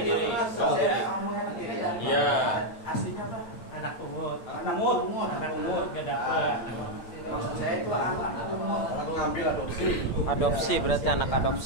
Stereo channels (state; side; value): late; right; 8.6 ms